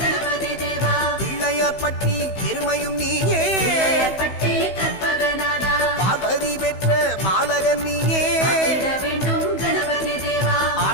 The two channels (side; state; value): right; late; 16 ms